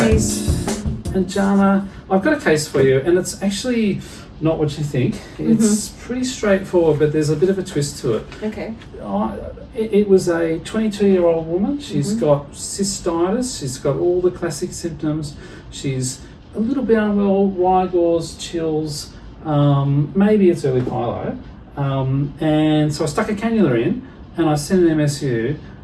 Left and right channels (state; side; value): identical; both; correlation 1.00